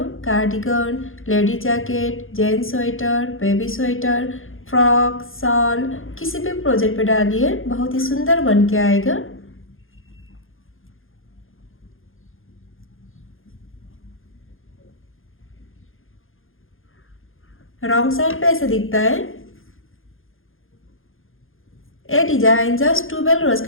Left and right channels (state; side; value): late; right; 0.60 ms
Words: Cardigan, lady jacket, gents sweater, baby sweater, frock, shawl, किसी भी प्रोजेक्ट पे डालिए, बहुत ही सुंदर बन के आएगा। रॉन्ग साइड पे ऐसे दिखता है। ये डिजाइन जस्ट ट्यूबेल रोज